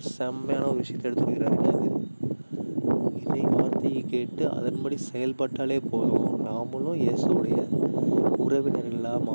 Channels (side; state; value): both; inverted; correlation -1.00